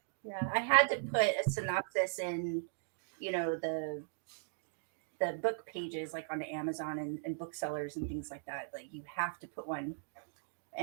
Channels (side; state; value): left; silent; digital silence